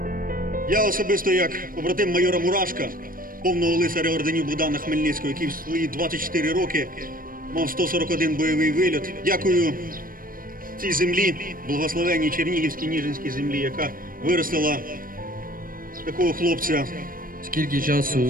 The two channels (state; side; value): late; left; 0.41 ms